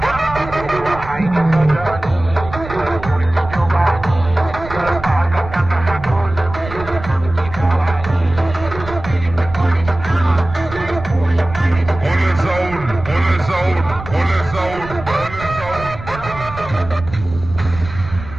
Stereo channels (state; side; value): noise; right; rumble, 12 dB below the sound